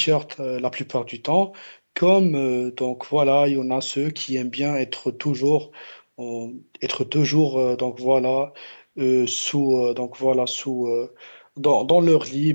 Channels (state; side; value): inverted; both; correlation -1.00